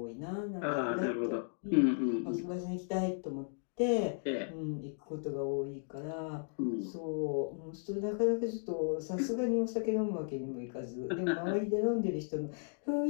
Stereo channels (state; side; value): silent; right; digital silence